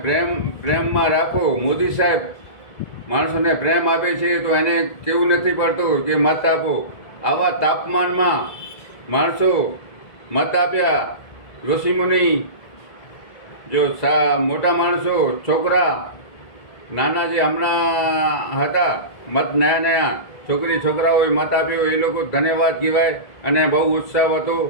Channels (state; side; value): late; right; 1.7 ms